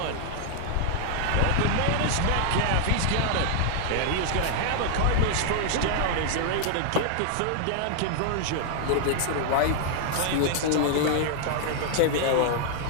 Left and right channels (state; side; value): different; both; correlation 0.00